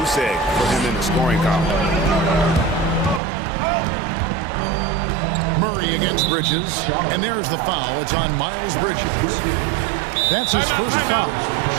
egg for him in the scoring column. Murray against Bridges. And there's the foul. It's on Miles Bridges. That's his first foul.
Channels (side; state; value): left; drops out; at 3.2 s